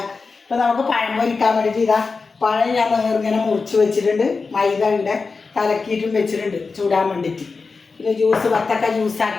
ഇപ്പം നമുക്ക് പഴം പൊരിക്കാൻ വേണ്ടിയിട്ട് ഇതാ പഴം ഞാൻ ഇങ്ങനെ മുറിച്ച് വെച്ചിട്ടുണ്ട്. മൈദ ഇവിടെ കലക്കിയിട്ടും വെച്ചിട്ടുണ്ട് ചൂടാൻ വേണ്ടിയിട്ട്. പിന്നെ ജ്യൂസ് വത്തക്ക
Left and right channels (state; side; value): quieter; right; 4.4 dB